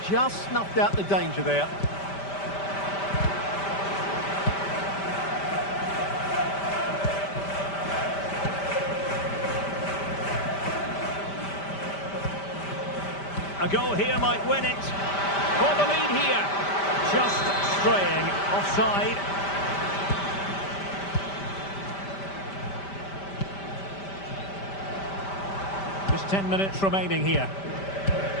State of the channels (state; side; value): late; right; 5.1 ms